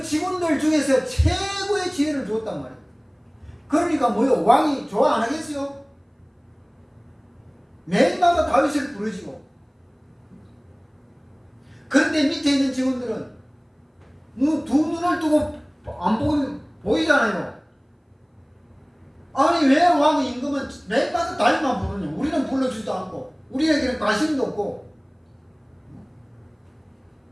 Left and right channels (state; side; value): identical; both; correlation 1.00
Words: 직원들 중에서 최고의 지혜를 주었단 말이에요. 그러니까 뭐요? 왕이 좋아 안 하겠어요? 매일마다 다윗을 부르시고. 그런데 밑에 있는 직원들은 두 눈을 뜨고 안 보면 보이잖아요. 아니 왜 왕 임금은 매일마다 다윗만 부르냐? 우리는 불러주지도 않고 우리에게는 관심도 없고.